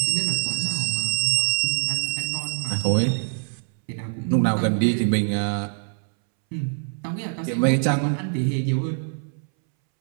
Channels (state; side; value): silent; left; 63 dB below the other